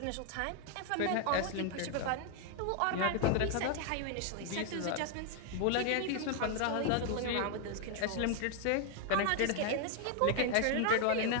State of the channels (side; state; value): both; different; correlation 0.00